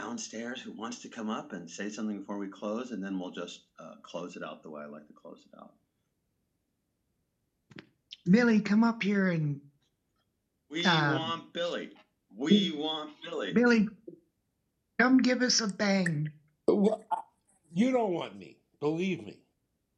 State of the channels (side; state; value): both; identical; correlation 1.00